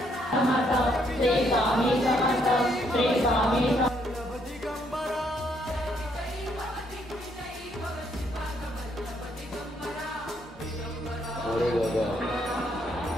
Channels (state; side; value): normal; both; correlation 0.72